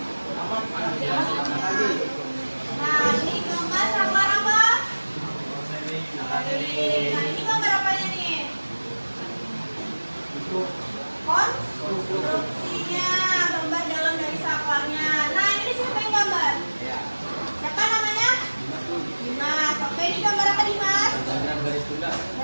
Nah, ini gambar saklar apa? Nah, ini gambar apanya nih? Konstruksinya, gambar dalam dari saklarnya. Nah, ini siapa yang gambar? Siapa namanya? Dimas. Oke, ini gambar apa Dimas? Diagram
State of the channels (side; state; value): both; inverted; correlation -1.00